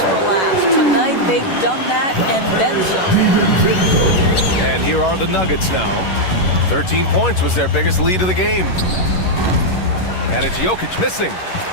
for last. Tonight, they've done that and then some. And here are the Nuggets now. 13 points was their biggest lead of the game. And it's Jokic missing.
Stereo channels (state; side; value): late; right; 11 ms